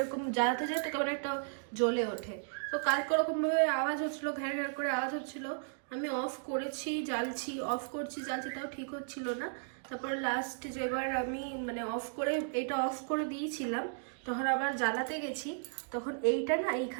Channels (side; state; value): left; silent; digital silence